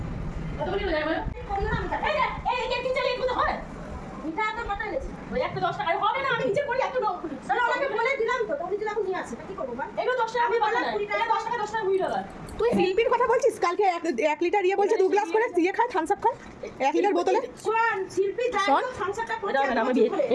কতগুলি হয়ে যাবে এই এই তিন চার এগুলো হয় মিঠা তো কত এনেছি ওই একটা 10 টাকা হবে না আমি নিচে করি এত লোক তাহলে ওনাকে বলে দিলাম তো উনি দিলাম নিয়ে আসে কি করব ভাই এগুলো 10 টাকা আমি বললাম 20 টাকা 10 টাকা 10 টাকা 20 টাকা তুই শিল্পীর কথা বলছিস? কালকে 1 লিটার ইয়ে বলছে 2 গ্লাস করে দিয়ে খায়, থামস আপ খায় 1 লিটার বোতলে। শোন শিল্পী যাই শোন। তো সংসারটা করছে আমি বিয়ে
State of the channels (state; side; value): identical; both; correlation 1.00